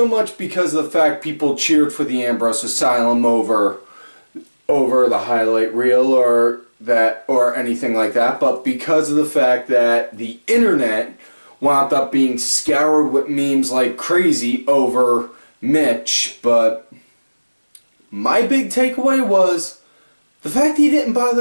much because of the fact people cheered for the Ambrose Asylum over the highlight reel or anything like that, but because of the fact that the internet wound up being scoured with memes like crazy over Mitch. But my big takeaway was the fact he didn't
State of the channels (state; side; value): inverted; both; correlation -1.00